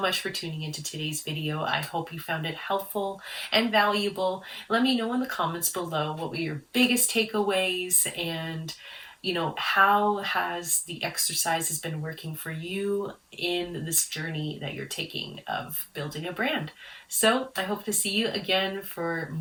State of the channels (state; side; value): identical; both; correlation 1.00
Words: much for tuning into today's video. I hope you found it helpful and valuable. Let me know in the comments below what were your biggest takeaways, and how has the exercises been working for you in this journey that you're taking of building a brand. So I hope to see you again for